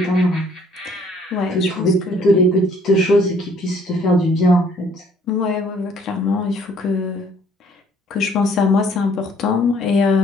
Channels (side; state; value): both; normal; correlation 0.60